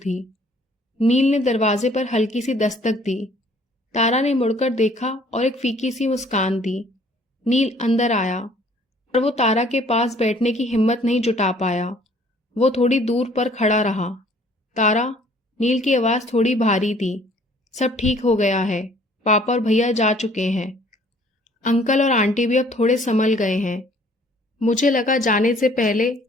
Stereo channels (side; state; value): both; normal; correlation 0.57